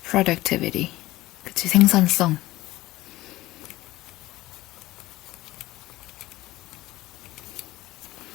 Productivity. 그치, 생산성.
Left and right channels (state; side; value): quieter; right; 17.6 dB